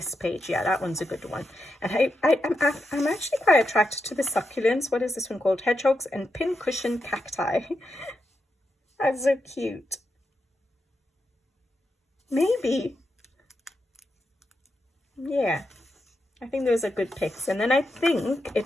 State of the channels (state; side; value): normal; both; correlation 0.85